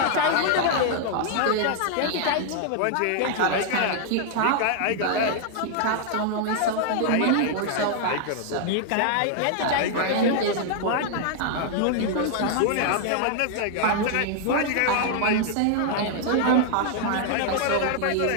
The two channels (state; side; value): different; both; correlation 0.00